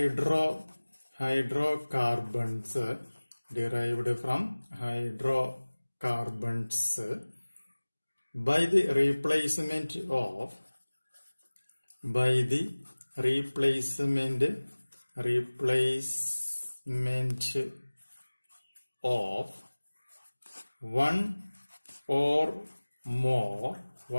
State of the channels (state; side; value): inverted; both; correlation -1.00